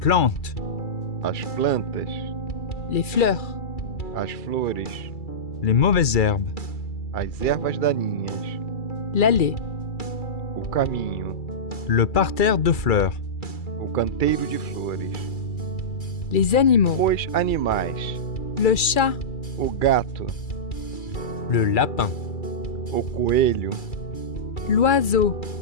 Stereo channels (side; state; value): right; late; 2.3 ms